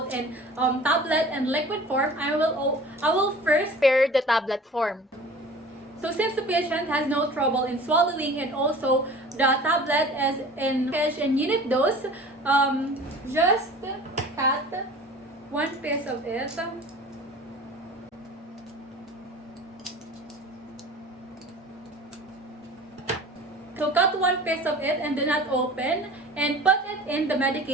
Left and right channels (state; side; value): normal; both; correlation 0.42